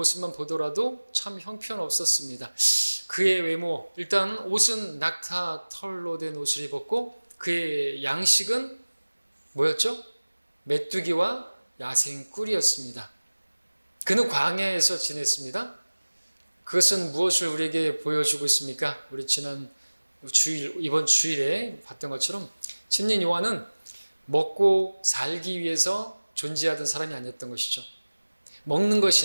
보더라도 참 형편없었습니다. 그의 외모, 일단 옷은 낙타 털로 된 옷을 입었고, 그의 양식은 뭐였죠? 메뚜기와 야생꿀이었습니다. 그는 광야에서 지냈습니다. 그것은 무엇을 우리에게 보여주고 있습니까? 우리 이번 주일에 봤던 것처럼 침례인 요한은 먹고 살기 위해서 존재하던 사람이 아니었던 것이죠. 먹는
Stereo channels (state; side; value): inverted; both; correlation -1.00